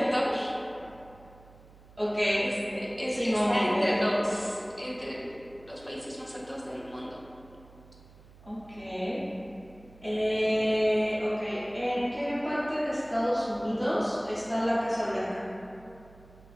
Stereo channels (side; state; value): right; noise; hum, 23 dB below the sound